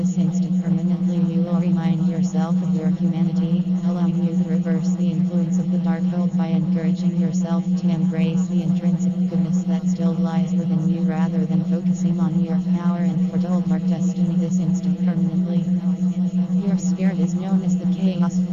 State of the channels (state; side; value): identical; both; correlation 1.00